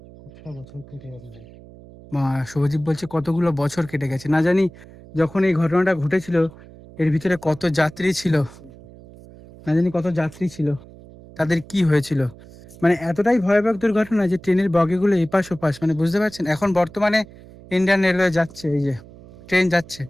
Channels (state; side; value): noise; right; hum, 20 dB below the sound